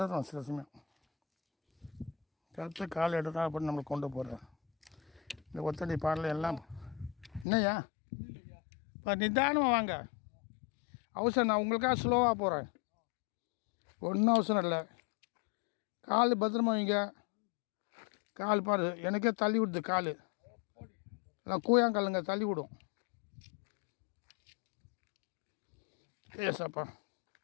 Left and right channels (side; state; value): right; drops out; at 7.5 s